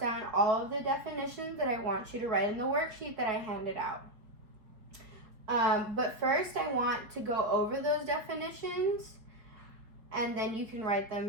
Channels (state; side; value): late; left; 4.8 ms